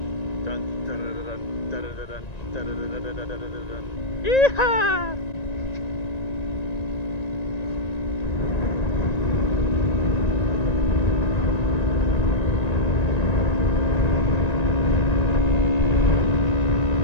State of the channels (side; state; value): right; late; 1.9 ms